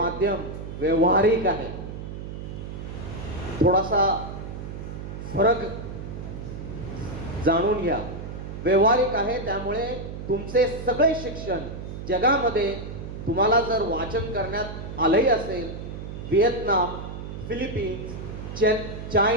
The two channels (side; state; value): right; noise; hum, 8 dB below the sound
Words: व्यवहारिक आहे. थोडासा फरक जाणून घ्या. व्यवहारिक आहे त्यामुळे तुमचे सगळे शिक्षण जगामध्ये तुम्हाला जर वाचन करण्यात आलंही असेल, व्हिएतनाम, फिलिपिन्स,